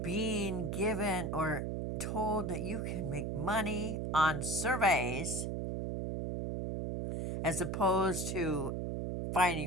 being given or told that you can make money on surveys as opposed to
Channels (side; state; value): right; noise; hum, 2 dB below the sound